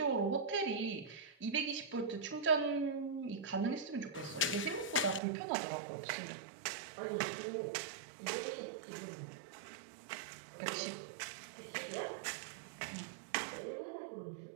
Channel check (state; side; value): drops out; left; at 5.2 s